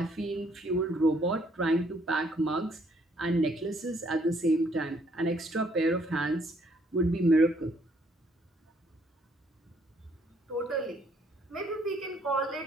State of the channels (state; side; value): normal; both; correlation 0.67